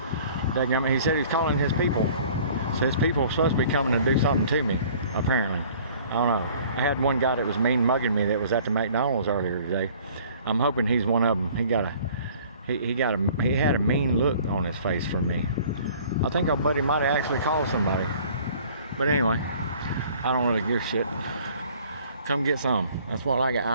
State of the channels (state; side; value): inverted; both; correlation -0.52